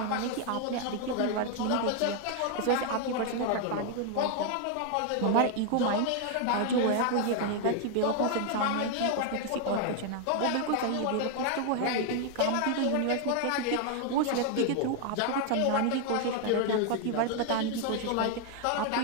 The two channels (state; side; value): different; both; correlation 0.00